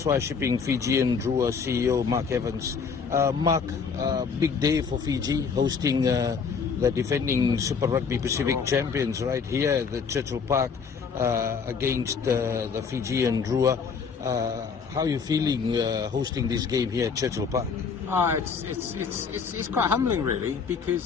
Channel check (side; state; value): right; quieter; 5.8 dB